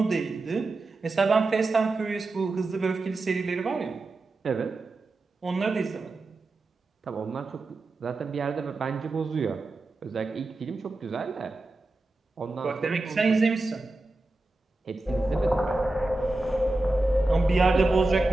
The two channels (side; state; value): left; quieter; 3.0 dB